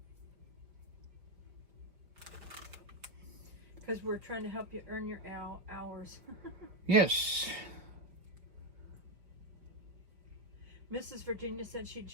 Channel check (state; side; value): late; left; 4.8 ms